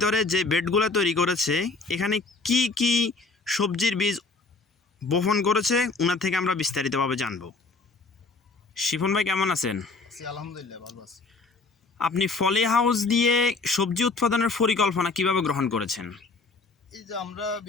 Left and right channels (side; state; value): right; quieter; 3.9 dB